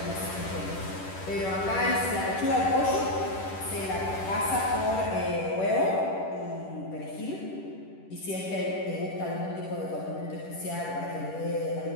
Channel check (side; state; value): right; late; 10 ms